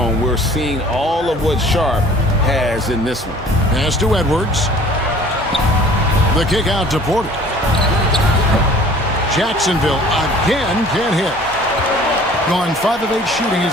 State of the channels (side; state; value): both; normal; correlation 0.50